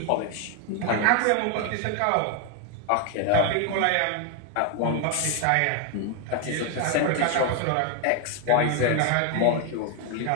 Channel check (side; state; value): both; different; correlation 0.01